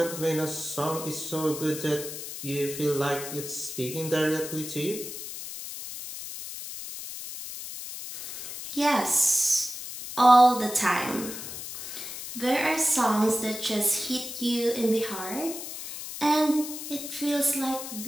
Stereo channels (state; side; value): noise; left; hiss, 9 dB below the sound